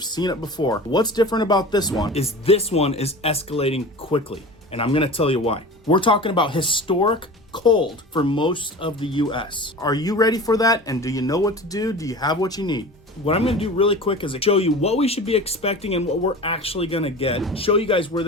seen it before. What's different about this one is escalating quickly, and I'm gonna tell you why. We're talking about historic cold for most of the US. Are you ready for that? And do you know what to do? Do you have what you need? What I'm gonna do really quick is show you what we should be expecting and what we're actually gonna get. Show you guys where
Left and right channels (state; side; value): normal; both; correlation 0.35